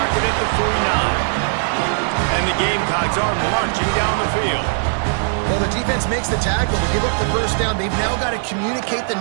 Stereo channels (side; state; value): left; silent; digital silence